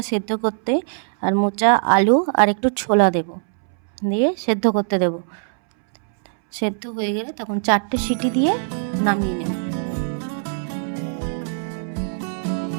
সেদ্ধ করতে, আর মোচা, আলু আর একটু ছোলা দেব, দিয়ে সেদ্ধ করতে দেব। সেদ্ধ হয়ে গেলে তখন 4টে সিটি দিয়ে নামিয়ে নেব।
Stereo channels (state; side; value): silent; left; 64 dB below the other